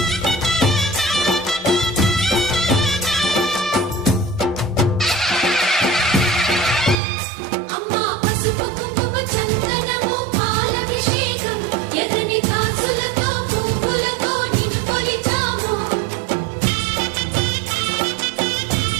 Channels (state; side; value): drops out; left; at 7.0 s